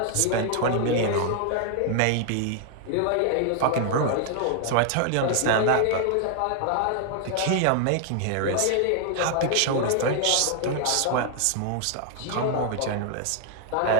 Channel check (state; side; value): different; both; correlation 0.00